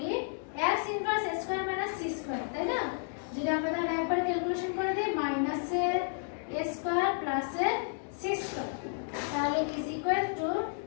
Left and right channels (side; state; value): right; silent; digital silence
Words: x inverse a square minus c square, তাই না? যদি আমরা তাহলে একবারে ক্যালকুলেশন করে দেই, মাইনাস এর a স্কয়ার প্লাস এর c স্কয়ার, তাহলে is equal to